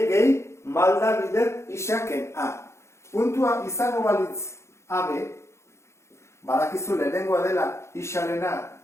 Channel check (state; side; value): late; right; 0.13 ms